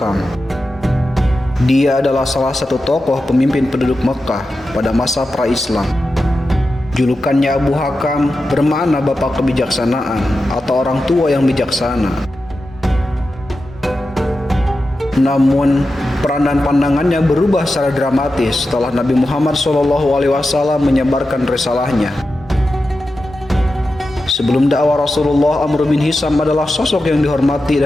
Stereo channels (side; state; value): both; normal; correlation 0.91